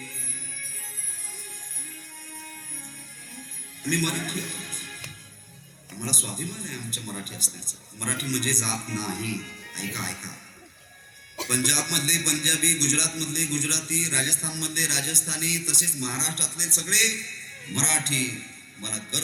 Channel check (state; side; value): identical; both; correlation 1.00